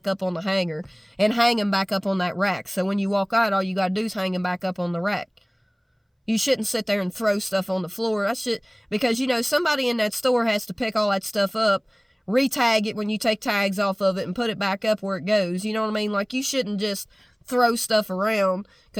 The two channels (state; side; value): identical; both; correlation 1.00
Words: up on the hanger and hang them back up on that rack. So when you walk out, all you got to do is hang them back up on the rack. You shouldn't sit there and throw stuff on the floor. Because, somebody in that store has to pick all that stuff up, re-tag it when you take tags off of it, and put it back up where it goes. You know what I mean? Like, you shouldn't just throw stuff around,